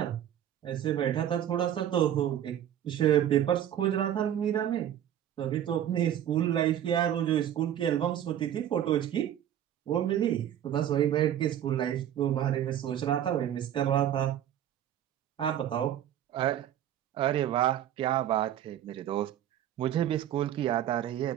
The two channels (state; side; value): quieter; left; 10.9 dB